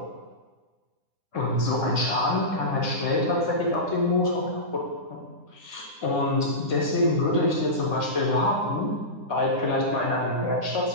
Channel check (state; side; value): late; left; 9.9 ms